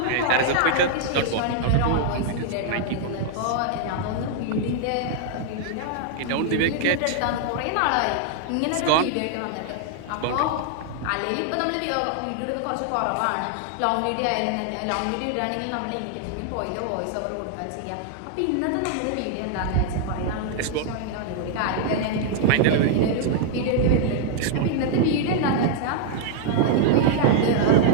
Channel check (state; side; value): different; both; correlation 0.00